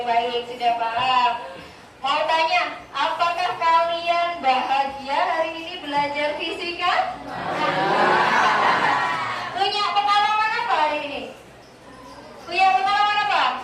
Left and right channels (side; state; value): both; identical; correlation 1.00